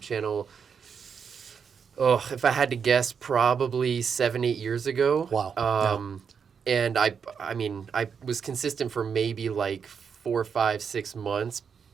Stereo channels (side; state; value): left; quieter; 6.6 dB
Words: if I had to guess, probably 7-8 years ago. Wow. And I was consistent for maybe like 4, 5, 6 months,